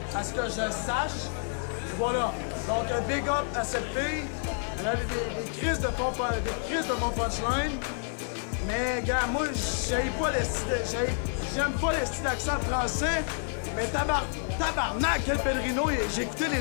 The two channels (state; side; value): silent; right; 58 dB below the other